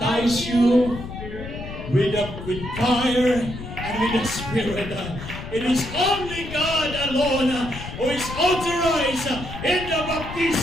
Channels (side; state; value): left; noise; rumble, 10 dB below the sound